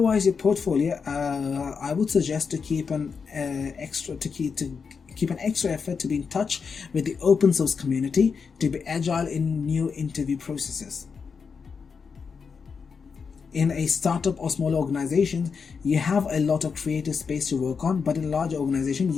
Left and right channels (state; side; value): quieter; right; 5.7 dB